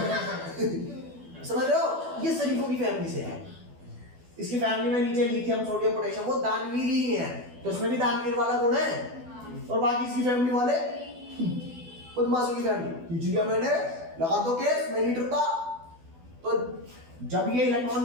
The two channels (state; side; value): late; left; 12 ms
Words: समझ रहे हो? ये शरीफों की फैमिली से है। इसकी फैमिली में नीचे लिथियम, सोडियम, पोटेशियम, वो दानवीर ही है, तो इसमें भी दानवीर वाला गुण है। और बाकी इसकी फैमिली वाले बदमाशों की फैमिली। खींच लिया मैंने, लगा दो केस, मैं नहीं डरता। तो जब ये